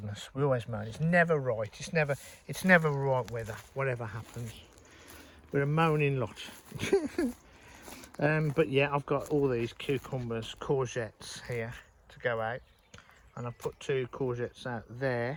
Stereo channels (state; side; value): identical; both; correlation 1.00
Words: We always moan. It's never right. It's never right weather. Whatever happens, we're a moaning lot. But yeah, I've got all these cucumbers, courgettes here to go out, and I've put 2 courgettes out